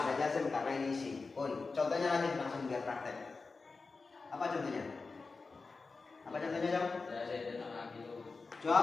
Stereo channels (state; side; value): quieter; right; 4.1 dB